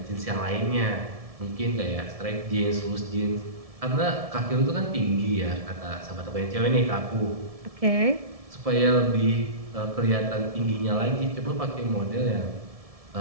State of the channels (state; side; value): late; left; 1.7 ms